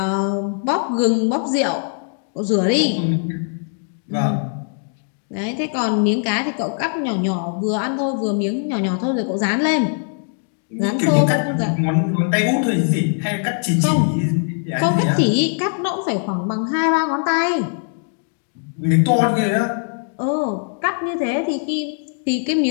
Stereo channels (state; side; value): silent; right; 57 dB below the other